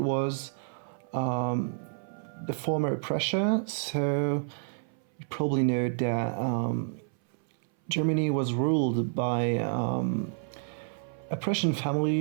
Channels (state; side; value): silent; left; 58 dB below the other